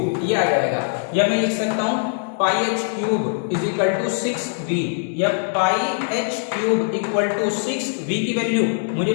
ये आ जाएगा, या मैं लिख सकता हूं pi h cube is equal to 6v, या pi h cube equal to 6v की वैल्यू मुझे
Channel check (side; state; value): right; silent; digital silence